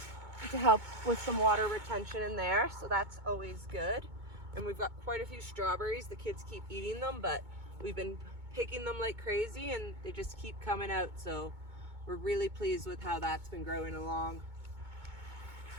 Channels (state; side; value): late; left; 2.2 ms